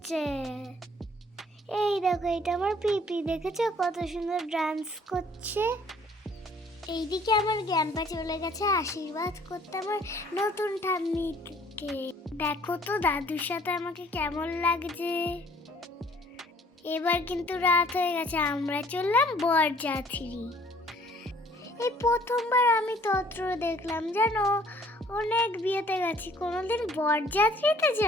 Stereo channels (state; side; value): normal; both; correlation 0.57